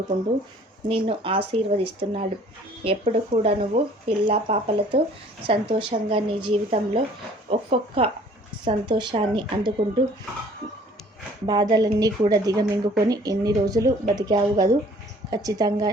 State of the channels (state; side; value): normal; both; correlation 0.54